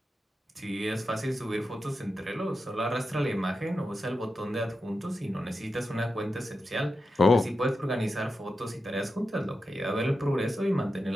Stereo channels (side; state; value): both; normal; correlation 0.90